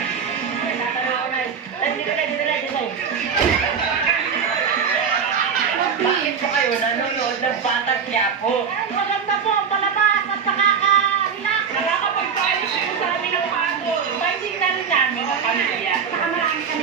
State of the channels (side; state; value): left; quieter; 6.5 dB